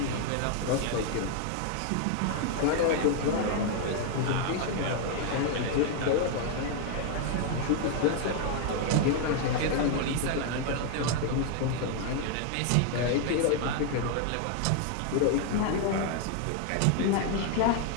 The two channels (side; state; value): both; different; correlation 0.00